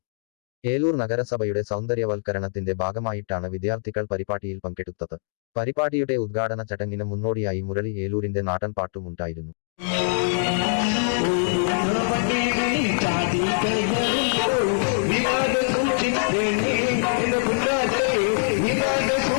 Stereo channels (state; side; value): silent; right; digital silence